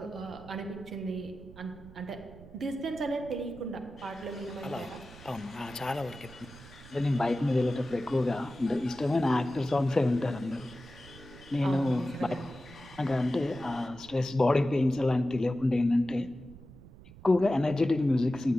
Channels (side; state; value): right; noise; rumble, 19 dB below the sound